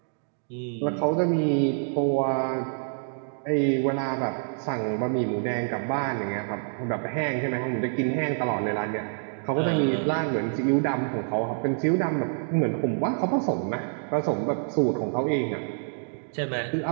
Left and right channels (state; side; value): silent; left; digital silence